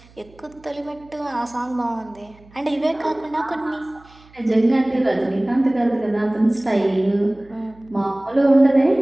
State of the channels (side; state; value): right; noise; hum, 26 dB below the sound